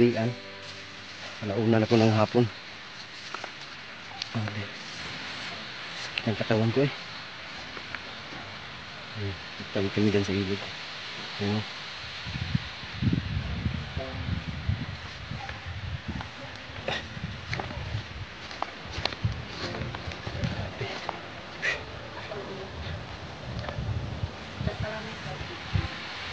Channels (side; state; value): both; identical; correlation 1.00